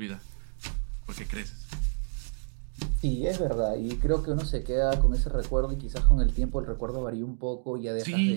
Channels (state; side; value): silent; left; 59 dB below the other